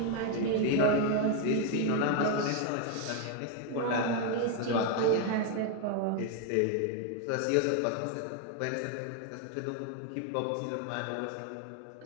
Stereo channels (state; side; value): different; both; correlation 0.01